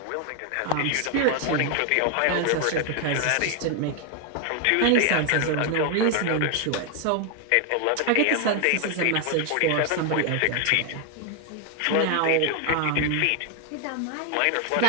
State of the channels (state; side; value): different; both; correlation 0.01